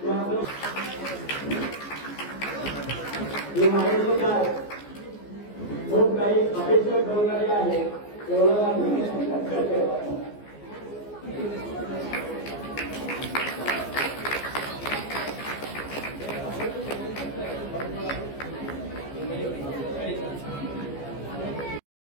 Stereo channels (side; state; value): right; late; 14 ms